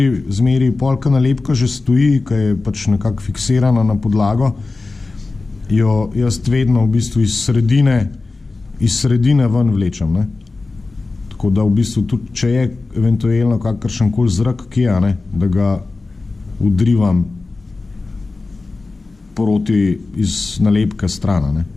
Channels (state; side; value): quieter; right; 3.6 dB